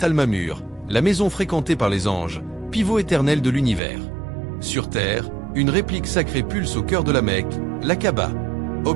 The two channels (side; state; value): left; drops out; at 3.8 s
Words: Al-Mamur, la maison fréquentée par les anges, pivot éternel de l'univers. Sur terre, une réplique sacrée pulse au cœur de la Mecque, la Kaaba.